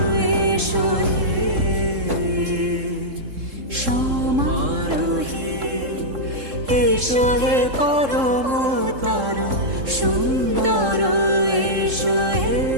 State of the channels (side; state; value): left; late; 3.7 ms